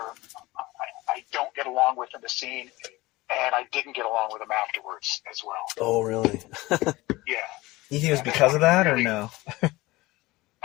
I don't get along with in the scene, and I didn't get along with them afterwards as well. Oh, really? Yeah. You think it was because of that, or no?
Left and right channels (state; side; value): quieter; right; 20.1 dB